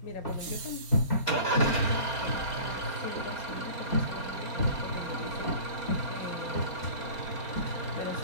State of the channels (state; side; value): late; right; 4.3 ms